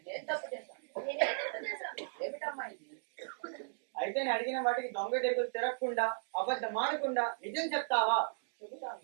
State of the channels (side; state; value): left; silent; digital silence